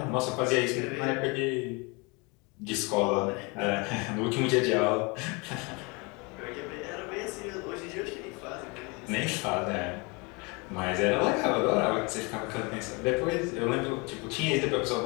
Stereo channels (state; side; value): quieter; right; 29.1 dB